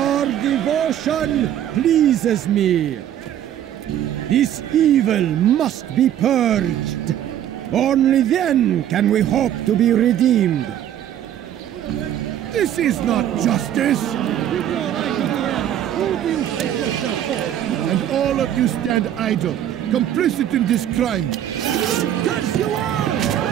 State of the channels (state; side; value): quieter; left; 10.9 dB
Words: devotion pleases me. This evil must be purged. Only then can we hope to be redeemed. This is not justice! Who do you take yourself for? And all of you stand idle, complicit in this crime. Curse you all!